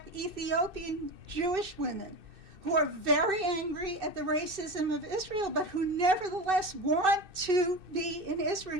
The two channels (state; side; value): late; left; 2.6 ms